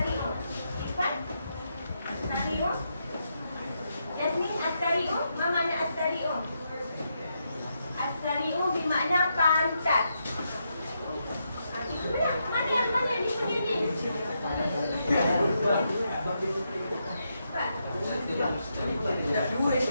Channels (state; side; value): inverted; both; correlation -0.82